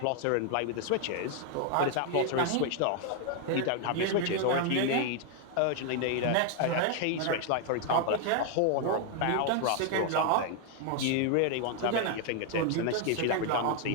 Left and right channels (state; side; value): different; both; correlation 0.00